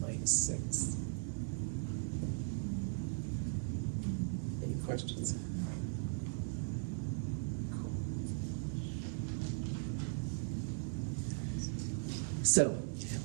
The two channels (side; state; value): left; silent; digital silence